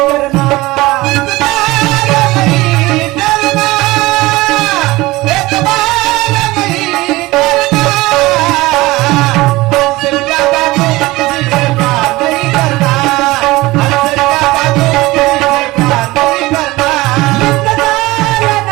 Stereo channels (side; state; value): left; quieter; 20.0 dB